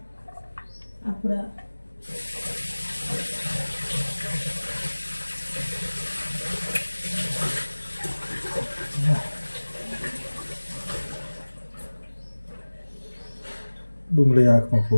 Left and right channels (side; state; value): both; inverted; correlation -1.00